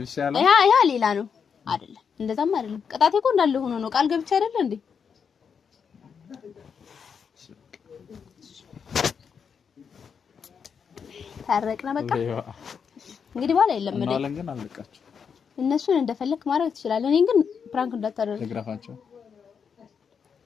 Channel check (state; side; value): quieter; right; 6.6 dB